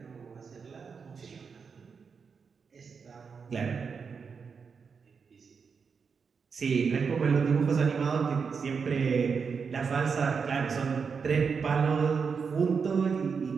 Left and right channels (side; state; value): left; quieter; 5.7 dB